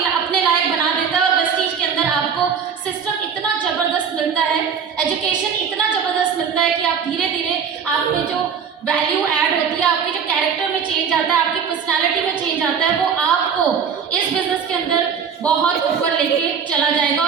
अपने लायक बना देता है। और वेस्टीज के अंदर आपको सिस्टम इतना ज़बरदस्त मिलता है, एजुकेशन इतना ज़बरदस्त मिलता है कि आप धीरे धीरे आप में जो वैल्यू ऐड होती है, आपके जो कैरेक्टर में चेंज आता है, आपकी पर्सनैलिटी में चेंज आता है, वो आपको इस बिजनेस के अंदर बहुत ऊपर लेके चला जाएगा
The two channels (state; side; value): quieter; left; 6.8 dB